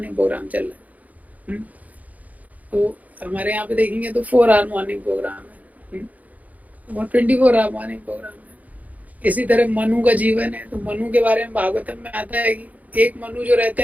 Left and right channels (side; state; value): left; late; 0.076 ms